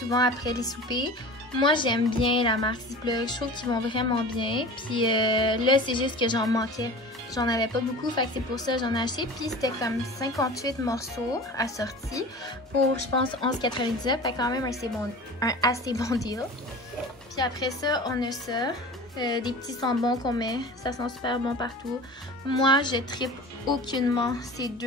après les soupers. Moi, j'aime bien la marque Ziploc. Je trouve qu'ils vont vraiment bien. Puis là, c'est juste que j'en manquais. J'en avais pas beaucoup, fait que c'est pour ça que j'en ai acheté. Puis c'était comme 58 morceaux assortis pour, je pense, 11,99. Fait quand même un assez bon deal. Puis après ça, on a ça. Des petits sambons qu'on met. Ça sent super bon partout. Moi, je trippe aucunement ces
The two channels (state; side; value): normal; both; correlation 0.37